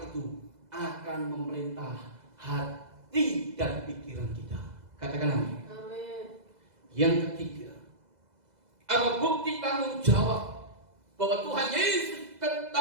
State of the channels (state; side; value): late; left; 2.0 ms